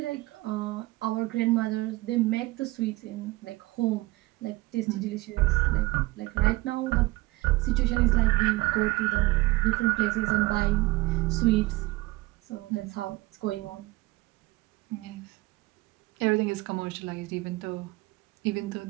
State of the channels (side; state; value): left; quieter; 20.8 dB